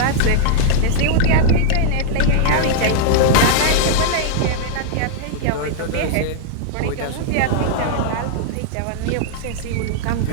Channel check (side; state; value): both; different; correlation -0.01